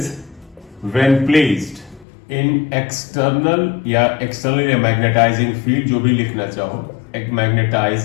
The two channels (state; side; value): drops out; right; at 2.1 s